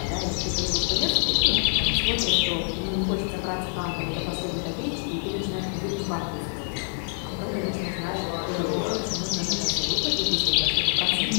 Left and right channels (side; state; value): right; silent; 61 dB below the other